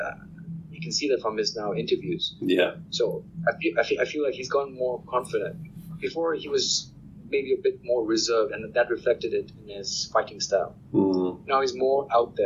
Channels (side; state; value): both; identical; correlation 1.00